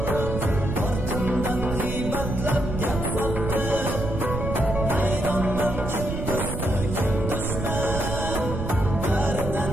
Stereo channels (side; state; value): right; noise; rumble, 4 dB below the sound